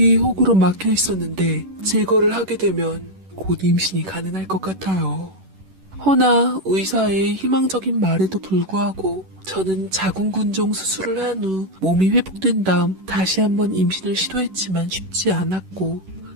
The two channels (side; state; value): left; late; 11 ms